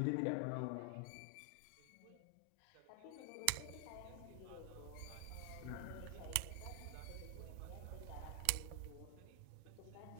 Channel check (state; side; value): different; both; correlation 0.00